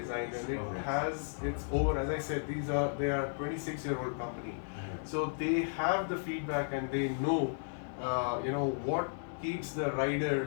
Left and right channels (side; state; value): right; silent; digital silence